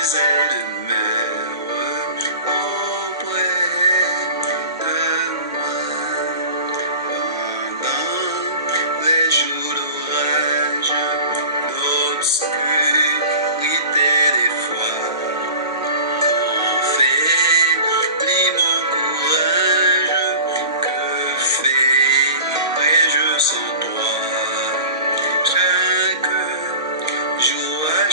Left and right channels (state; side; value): inverted; both; correlation -0.39